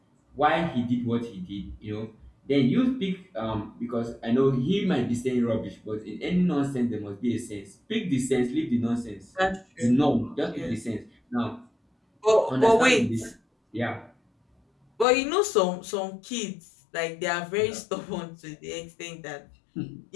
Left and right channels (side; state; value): right; drops out; at 15.1 s